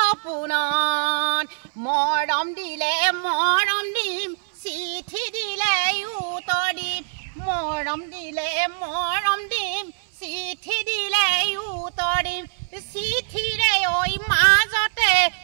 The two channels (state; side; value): silent; left; 59 dB below the other